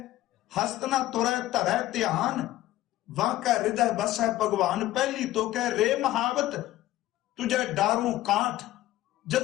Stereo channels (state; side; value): quieter; right; 15.2 dB